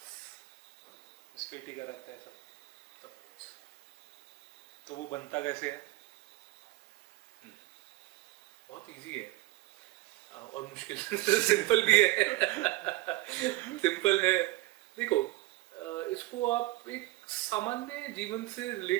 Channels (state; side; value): quieter; left; 19.0 dB